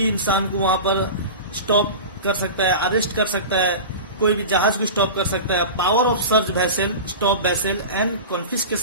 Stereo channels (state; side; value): inverted; both; correlation -0.30